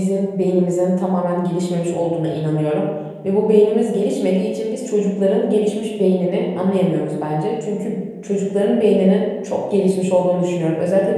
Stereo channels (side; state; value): both; identical; correlation 1.00